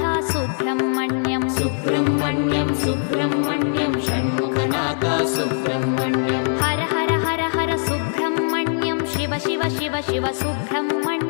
Subrahmanyam Subrahmanyam Subrahmanyam Shanmukhanath Subrahmanyam Har Har Har Har Subrahmanyam Shiva Shiva Shiva Shiva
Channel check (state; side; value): silent; right; digital silence